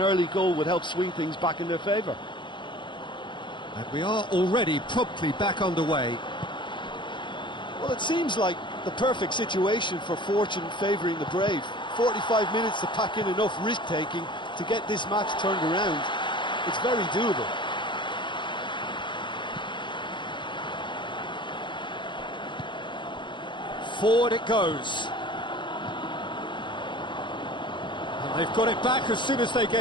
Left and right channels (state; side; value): late; right; 0.23 ms